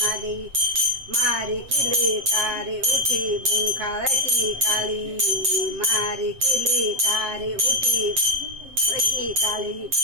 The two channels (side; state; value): left; late; 7.7 ms